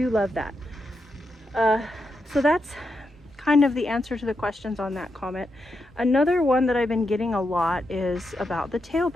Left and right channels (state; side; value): normal; both; correlation 0.84